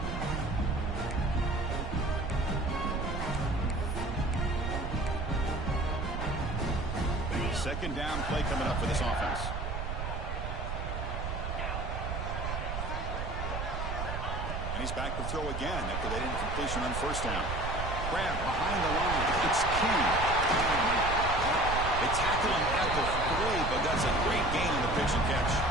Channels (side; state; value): right; noise; rumble, 3 dB below the sound